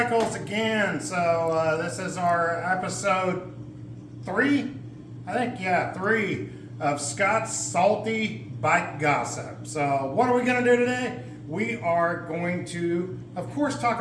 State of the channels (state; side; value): identical; both; correlation 1.00